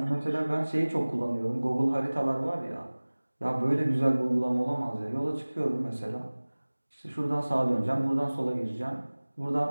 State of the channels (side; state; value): both; inverted; correlation -1.00